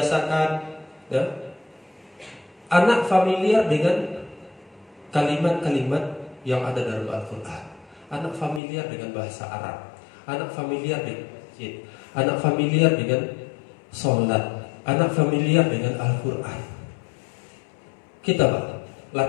ya. Anak familiar dengan kalimat-kalimat yang ada dalam Al-Quran. Anak familiar dengan bahasa Arab. Anak familiar dengan masjid. Anak familiar dengan sholat. Anak familiar dengan Al-Quran. Kita Pak,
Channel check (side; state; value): right; drops out; at 8.6 s